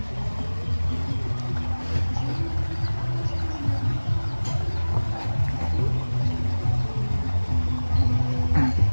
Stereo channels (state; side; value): inverted; both; correlation -1.00